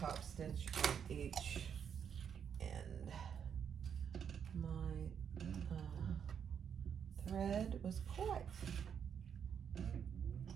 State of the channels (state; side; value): quieter; left; 7.8 dB